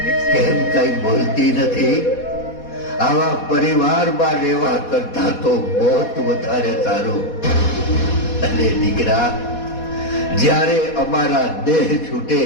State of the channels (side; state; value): right; late; 4.1 ms